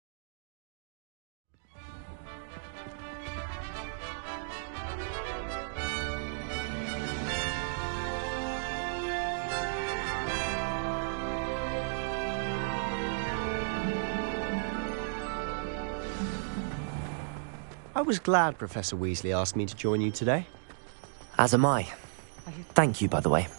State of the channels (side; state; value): left; silent; digital silence